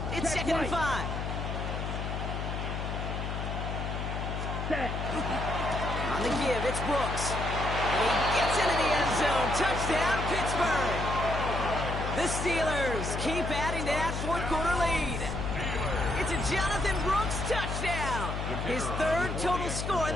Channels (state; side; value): noise; left; hum, 3 dB below the sound